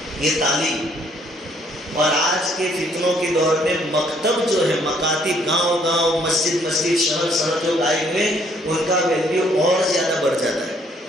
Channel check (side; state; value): both; normal; correlation 0.65